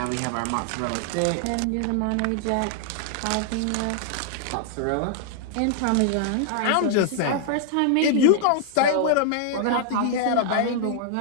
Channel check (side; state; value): both; different; correlation -0.01